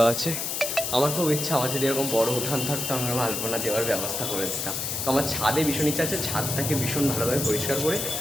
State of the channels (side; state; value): left; noise; hiss, 2 dB below the sound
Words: আছে। আমার খুব ইচ্ছা আমার যদি এরকম বড় উঠান থাকতো, আমরা আলপনা দেওয়ার ব্যবস্থা করে দিতাম। তো আমার ছাদে ভীষণ ইচ্ছা আছে, ছাদটাকে ভীষণ ভালোভাবে পরিষ্কার করে